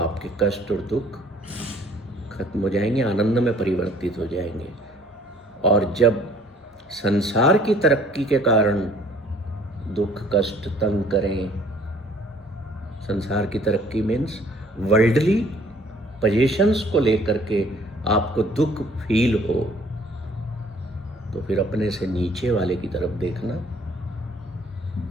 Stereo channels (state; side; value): normal; both; correlation 0.57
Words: कष्ट और दुख खत्म हो जाएंगे, आनंद में परिवर्तित हो जाएंगे। और जब संसार की तरक्की के कारण दुख कष्ट तंग करें, संसार की तरक्की मीन्स वर्ल्डली पोजीशंस को लेकर के आपको दुख फील हो, तो फिर अपने से नीचे वाले की तरफ देखना,